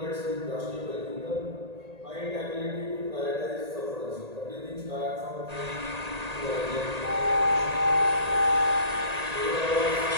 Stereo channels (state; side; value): late; left; 1.8 ms